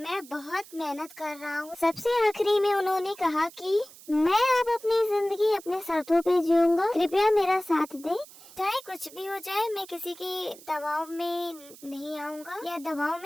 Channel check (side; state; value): right; noise; hiss, 20 dB below the sound